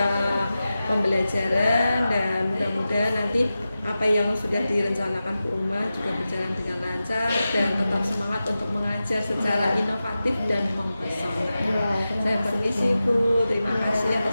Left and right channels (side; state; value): both; inverted; correlation -0.93